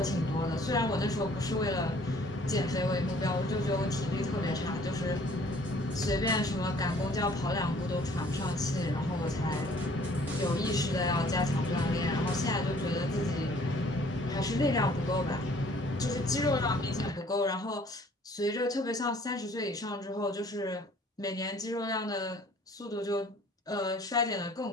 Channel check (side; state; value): both; normal; correlation 0.56